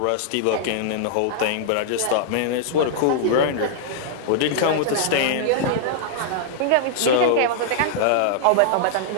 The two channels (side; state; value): both; different; correlation -0.01